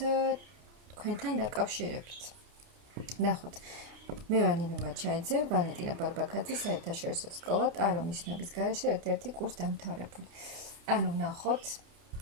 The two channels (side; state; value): left; late; 29 ms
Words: თქვენთან დაკავშირებით. ნახოთ. მე ვარ ნინო მაჩაიძე, ვალენტინა ბარბაქაძე, საერთაშორისო სკოლა ტარო ნიშნების გარეშე ერთ-ერთი კურს დამთავრებული. ანუ ნახოთ